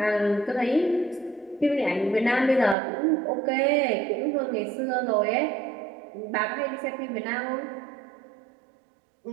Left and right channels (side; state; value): left; drops out; at 2.8 s